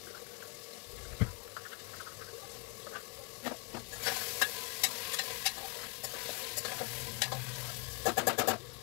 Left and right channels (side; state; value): right; quieter; 30.6 dB